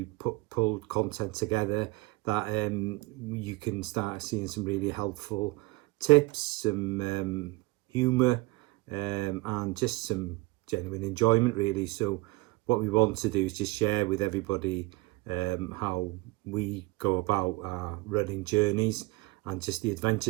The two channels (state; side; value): quieter; left; 21.7 dB